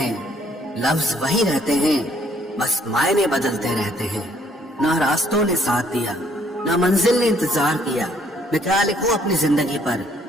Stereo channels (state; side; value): normal; both; correlation 0.65